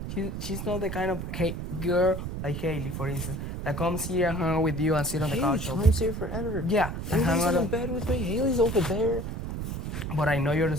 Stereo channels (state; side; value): noise; right; rumble, 5 dB below the sound